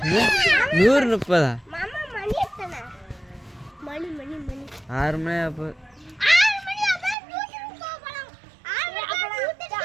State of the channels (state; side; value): drops out; left; at 7.2 s